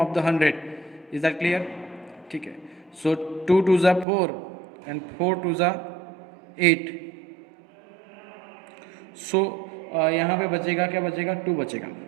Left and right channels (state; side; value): drops out; left; at 4.0 s